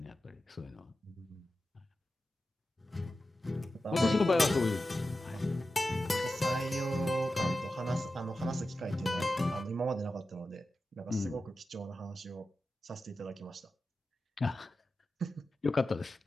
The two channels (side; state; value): both; normal; correlation 0.93